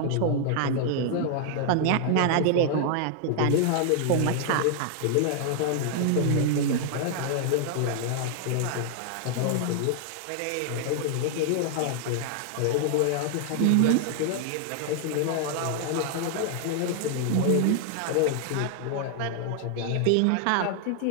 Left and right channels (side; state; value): both; different; correlation 0.00